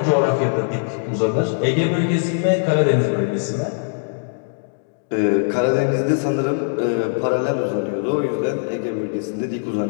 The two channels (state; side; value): silent; right; digital silence